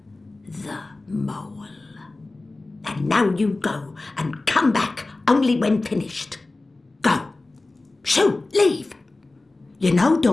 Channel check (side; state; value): right; quieter; 3.1 dB